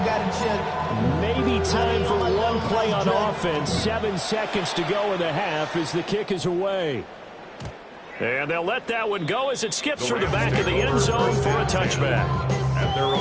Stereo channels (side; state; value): both; identical; correlation 1.00